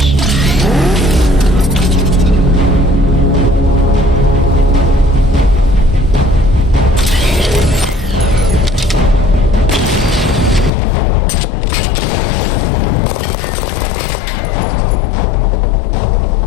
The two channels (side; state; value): right; drops out; at 10.7 s